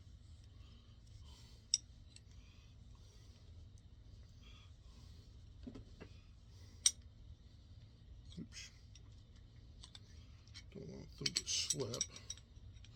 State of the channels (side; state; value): both; identical; correlation 1.00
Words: Oops. Don't want them to slip.